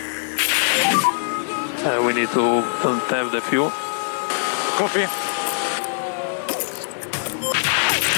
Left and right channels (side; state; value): right; silent; digital silence